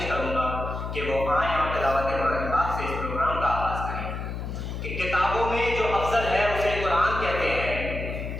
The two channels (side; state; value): left; noise; hum, 5 dB below the sound